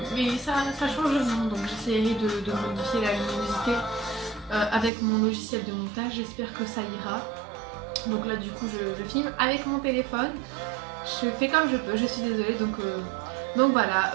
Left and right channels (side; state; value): left; drops out; at 4.9 s